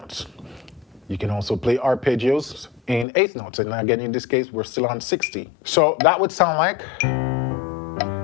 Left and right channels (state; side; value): drops out; right; at 3.1 s